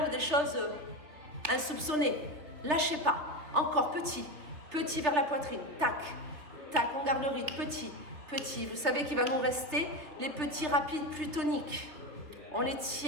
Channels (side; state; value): left; late; 3.5 ms